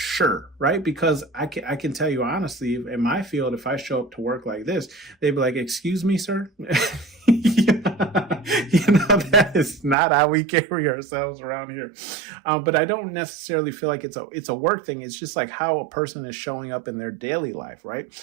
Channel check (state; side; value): drops out; left; at 10.0 s